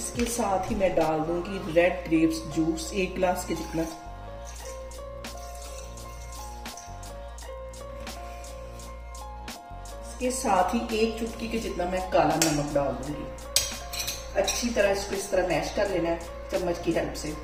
साथ ही मैं डाल दूंगी रेड ग्रेप्स जूस 1 गिलास के जितना। इसके साथ ही 1 चुटकी के जितना मैं काला नमक डाल दूंगी। अच्छी तरह इसको इस तरह मैश कर लेना है चम्मच की हेल्प से।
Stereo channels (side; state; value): both; identical; correlation 1.00